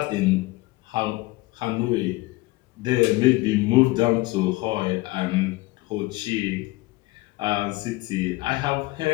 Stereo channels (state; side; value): quieter; right; 21.0 dB